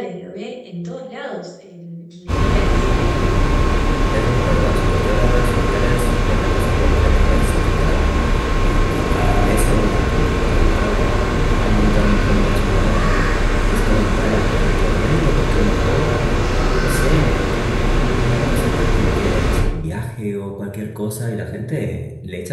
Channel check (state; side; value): identical; both; correlation 1.00